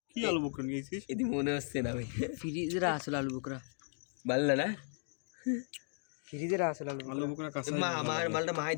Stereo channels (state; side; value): silent; right; 54 dB below the other